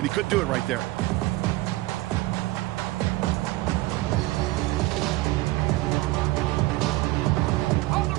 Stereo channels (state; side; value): quieter; left; 19.2 dB